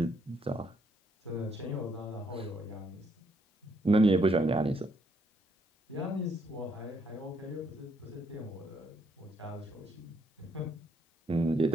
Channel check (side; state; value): both; normal; correlation 0.72